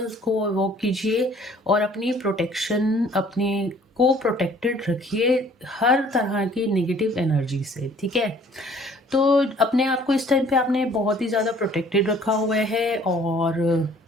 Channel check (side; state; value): both; normal; correlation 0.55